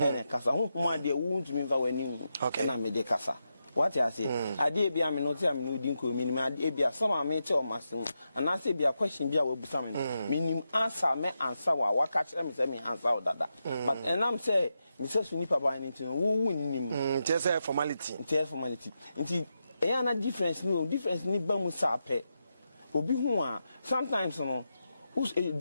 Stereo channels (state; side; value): inverted; both; correlation -0.87